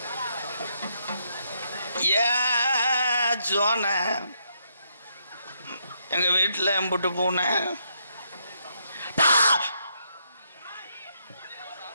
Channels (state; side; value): inverted; both; correlation -0.76